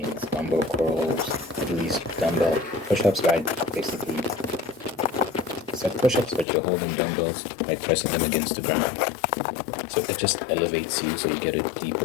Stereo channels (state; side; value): drops out; right; at 6.5 s